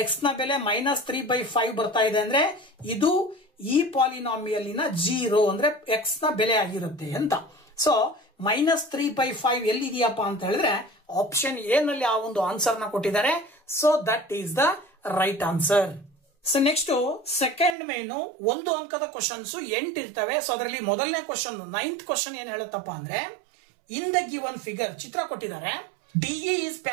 ಎಕ್ಸ್ ನ ಬೆಲೆ -3/5 ಬರ್ತಾ ಇದೆ. ಅಂದ್ರೆ ಇದು ಈ ಪಾಲಿನಾಮಿಯಲ್ಲಿನ 0 ಅಂದ್ರೆ ಎಕ್ಸ್ ನ ಬೆಲೆ ಆಗಿರುತ್ತೆ ಅಂತ. ಸೊ -3/5 ಎಲ್ಲಿದೆಯಪ್ಪ ಅಂತ ಹೇಳಿದ್ರೆ ಆಪ್ಷನ್ ಎ ನಲ್ಲಿ ಆ ಒಂದು ಆನ್ಸರ್ ನ ಕೊಟ್ಟಿದ್ದಾರೆ. So that is the right answer. So next second main 1 ಅಂಕದ ಕ್ವಶನ್ಸ್ 8 ಇರ್ತವೆ. ಸೊ ಅದರಲ್ಲಿ ಮೊದಲನೇ ಕ್ವಶನ್ 9th ಕ್ವಶನ್ ಏನ್ ಹೇಳುತ್ತಪ್ಪ ಅಂದ್ರೆ ಇನ್ ದ ಗಿವನ್ ಫಿಗರ್ ಚಿತ್ರ ಕೊಟ್ಟಿದ್ದಾರೆ. DE is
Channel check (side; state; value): left; drops out; at 17.8 s